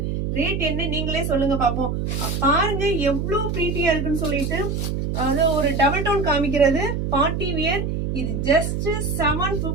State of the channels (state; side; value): noise; right; hum, 1 dB below the sound